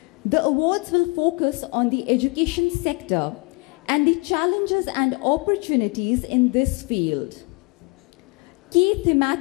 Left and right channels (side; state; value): right; quieter; 29.5 dB